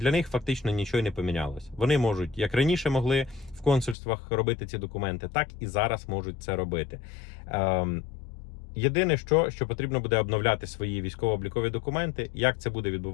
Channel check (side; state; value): right; drops out; at 4.0 s